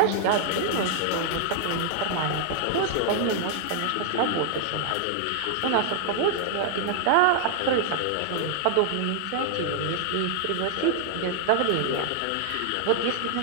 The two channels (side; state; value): both; different; correlation 0.00